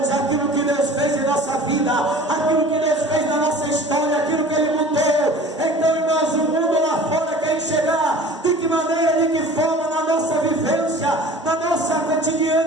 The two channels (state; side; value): normal; both; correlation 0.43